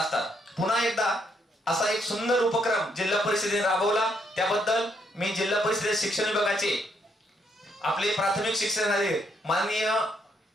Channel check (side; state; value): both; normal; correlation 0.74